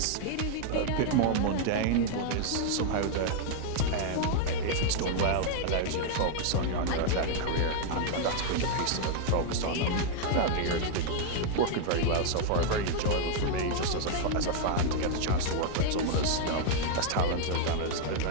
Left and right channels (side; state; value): both; different; correlation 0.00